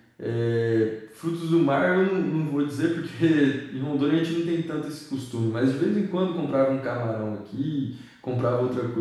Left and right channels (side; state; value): both; identical; correlation 1.00